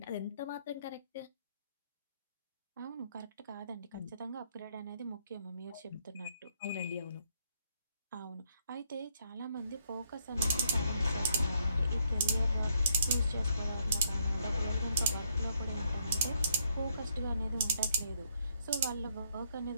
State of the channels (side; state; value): both; inverted; correlation -0.70